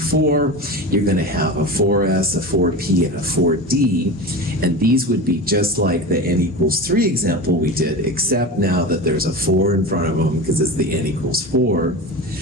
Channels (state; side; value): normal; both; correlation 0.27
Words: You're going to have a 4S, a 4P, and a 4D. And these would be just like the n equals 3 example we did, except now that there's a 4 in front of them because it's the n equals 4.